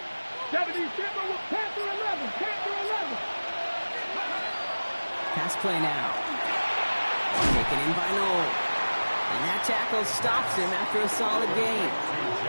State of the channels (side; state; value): both; inverted; correlation -1.00